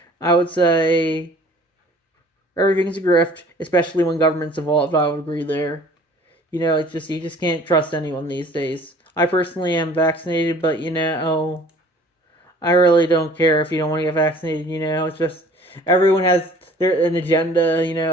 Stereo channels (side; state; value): both; normal; correlation 0.51